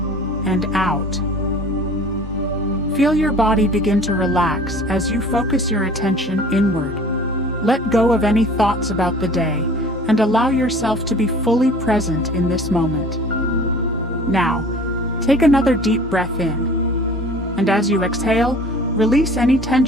and out. Feel your body begin to relax as you focus your attention inward. Let go of any thoughts about the day and allow yourself to be fully present in this moment. Now, take another deep breath in. And as you exhale, release any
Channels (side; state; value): both; normal; correlation 0.46